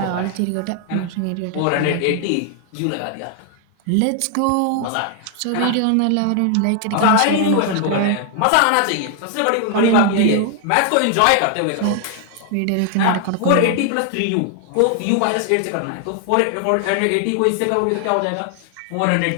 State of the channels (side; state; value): both; different; correlation 0.00